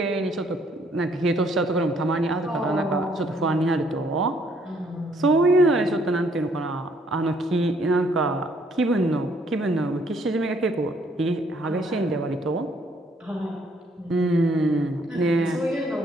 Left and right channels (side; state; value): both; normal; correlation 0.66